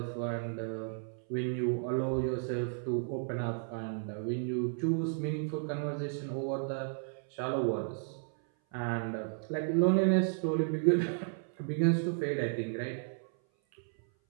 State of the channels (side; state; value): left; silent; 55 dB below the other